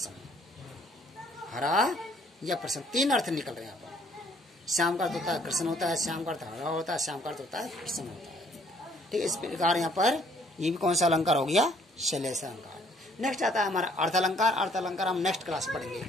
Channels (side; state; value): both; normal; correlation 0.62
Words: हरा या प्रसन्न, तीन अर्थ निकल रहे हैं यहाँ पर। श्याम का अर्थ होता है कृष्ण होता है, श्याम का अर्थ हरा होता है, श्याम का अर्थ होता है प्रसन्न होता है, ठीक है। इस प्रकार यहाँ पर ये भी कौन सा अलंकार हो गया? शैलेश अलंकार। नेक्स्ट आता है हमारा अर्थ अलंकार। अर्थ अलंकार हम नेक्स्ट क्लास पढ़ेंगे।